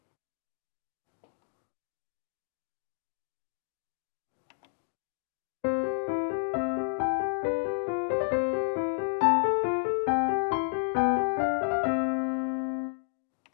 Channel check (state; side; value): silent; right; digital silence